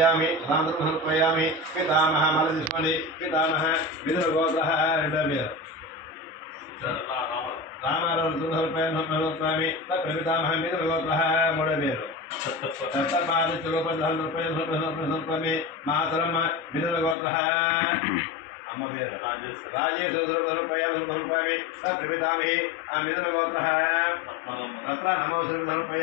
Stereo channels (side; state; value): right; drops out; at 17.2 s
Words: సుధాంతరపయామి పితామహ మల తీసుకోండి. పితామహ మిదుల గోత్ర 2వ పేరు రామారావు పితామహ మిదుల గోత్ర 3వ పేరు సప్తపాదమి మాతరం మిదుల గోత్ర అమ్మ పేరు రాజేశ్వరపయామి ప్రపితామి మిదుల గోత్ర తత్ర